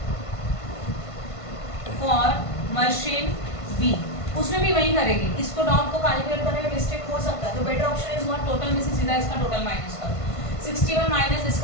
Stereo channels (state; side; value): late; right; 1.5 ms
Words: for machine B, उसमें भी वही करेंगे, इसको डॉट को कैलकुलेट करने में मिस्टेक हो सकता है, तो better option is what total में से सीधा इसका टोटल माइनस करो, 61 माइनस